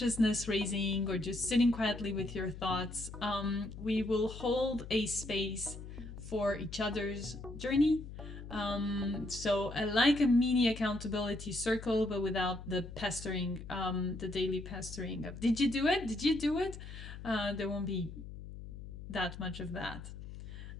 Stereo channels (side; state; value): left; noise; hum, 11 dB below the sound